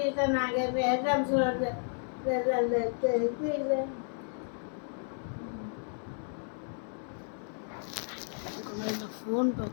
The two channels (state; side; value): silent; right; 56 dB below the other